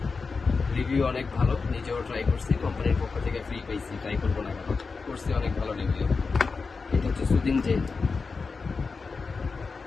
Review অনেক ভালো, নিজেও ট্রাই করছি, কোম্পানির পক্ষ থেকে ফ্রি পাইছি, ট্রাই করবো না কেন, করছি, অনেক ভালো রিভিউ। এটা হচ্ছে সুদিং জেল।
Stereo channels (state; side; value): quieter; right; 4.6 dB